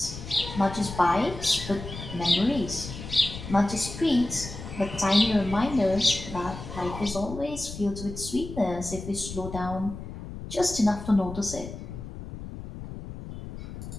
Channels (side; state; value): left; noise; rumble, 10 dB below the sound